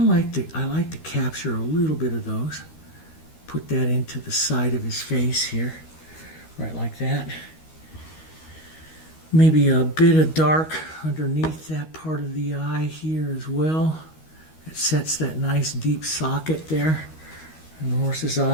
like to capture a little bit of those. Put that into the side of his face here, right like that. Maybe a bit of dark underneath that part of the eye here as well. It sets that nice deep socket there in the horse's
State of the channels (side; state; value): right; late; 13 ms